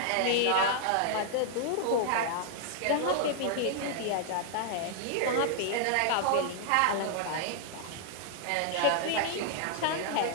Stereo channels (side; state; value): both; different; correlation -0.01